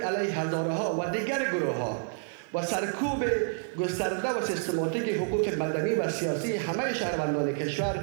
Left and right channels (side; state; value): left; silent; digital silence